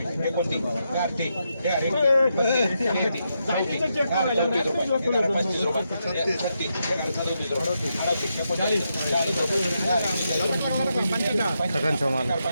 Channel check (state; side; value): inverted; both; correlation -0.83